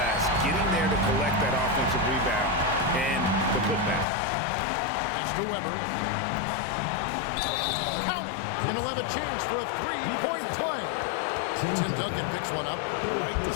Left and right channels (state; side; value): drops out; right; at 4.0 s